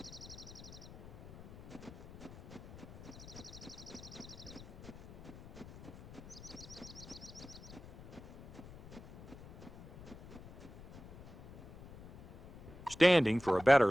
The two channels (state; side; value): noise; left; rumble, 16 dB below the sound